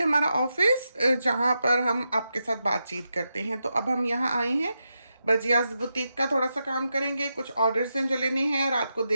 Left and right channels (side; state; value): both; inverted; correlation -0.87